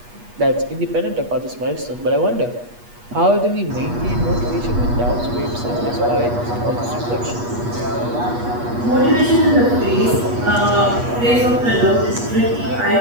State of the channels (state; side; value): late; left; 8.3 ms